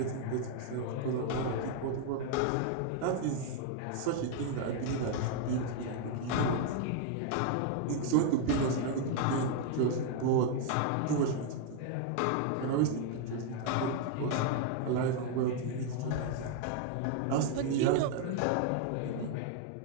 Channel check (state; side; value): different; both; correlation 0.00